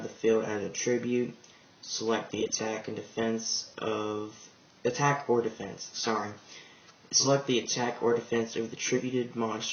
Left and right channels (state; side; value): identical; both; correlation 1.00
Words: the field as a tribute. Select the attack or defense. Select the attack or defense of the tributed